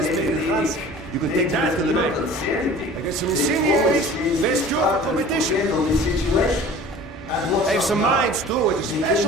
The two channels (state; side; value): normal; both; correlation 0.44